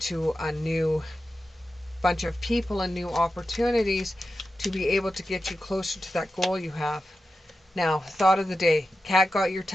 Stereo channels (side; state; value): both; normal; correlation 0.91